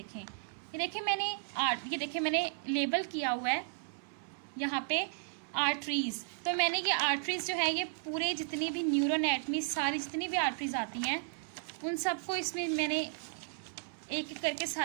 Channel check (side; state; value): left; silent; 55 dB below the other